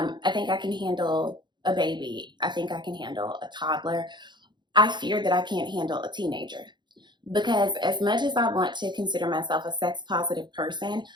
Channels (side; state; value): left; late; 0.22 ms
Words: think I can handle a baby. I think I can handle a toddler. I fear that I can't handle a teenager. Because as much as I want to consider myself a sex positive person,